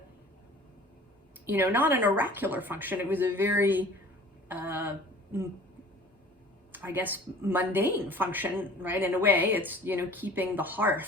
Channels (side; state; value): both; normal; correlation 0.47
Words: an oracular function. It was a very, mundane function, right? In a way, it's, keeping the